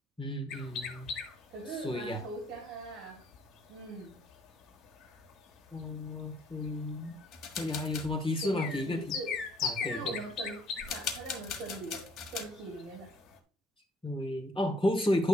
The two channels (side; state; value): both; normal; correlation 0.63